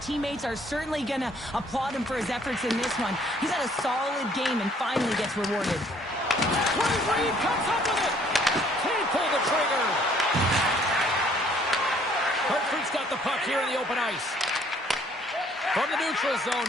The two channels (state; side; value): normal; both; correlation 0.61